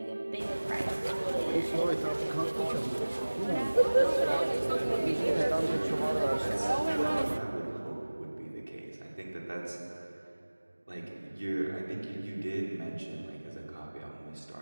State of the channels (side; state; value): both; inverted; correlation -1.00